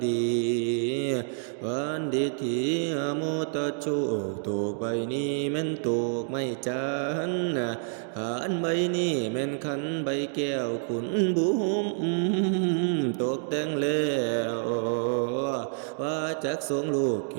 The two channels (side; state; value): left; silent; digital silence